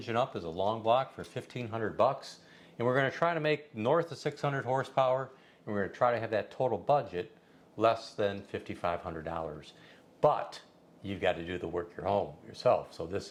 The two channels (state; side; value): identical; both; correlation 1.00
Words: up as a long block for $1,500, and we're going to try to make north of 600 horsepower, and we're going to try to have that total budget less than $5,500. But you've got to do the work yourself. So